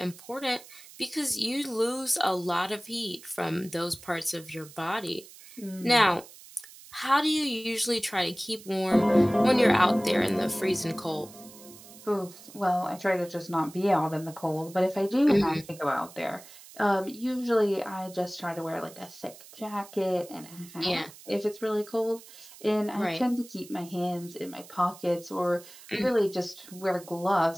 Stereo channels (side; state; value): right; noise; hiss, 19 dB below the sound